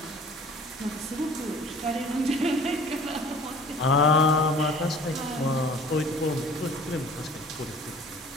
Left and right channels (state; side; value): normal; both; correlation 0.48